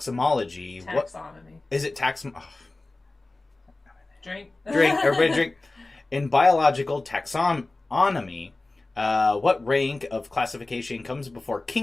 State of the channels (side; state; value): right; quieter; 3.1 dB